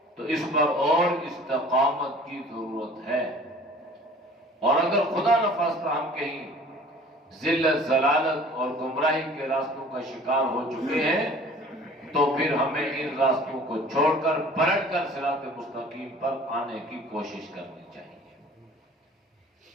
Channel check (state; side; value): normal; both; correlation 0.48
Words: تو اس پر اور استقامت کی ضرورت ہے، اور اگر خدا نخواستہ ہم کہیں ذلت، ضلالت اور گمراہی کے راستوں کا شکار ہو چکے ہیں تو پھر ہمیں ان راستوں کو چھوڑ کر پلٹ کر صراط مستقیم پر آنے کی کوشش کرنی چاہیے۔